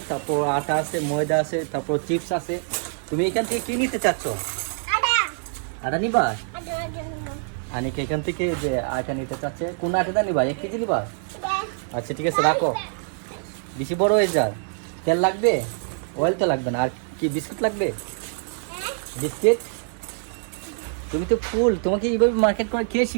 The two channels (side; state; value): left; silent; 61 dB below the other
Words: তারপর আটা আছে, ময়দা আছে, তারপর চিপস আছে। তুমি এখান থেকে কি নিতে চাচ্ছ? আটা নিবা? আনিকা এখান থেকে যে আটা নিতে চাচ্ছে, কোন আটাটা নিবা? 1 কেজি নিবা? আচ্ছা ঠিক আছে, রাখো। বেশি বড় হয়ে যার। তেল লাগবে? অয়েল তো লাগবে না। আর কি বিস্কুট লাগবে? বিস্কিট? তুমি তো ফুল, তোমাকে এইভাবে মার্কেট করে কে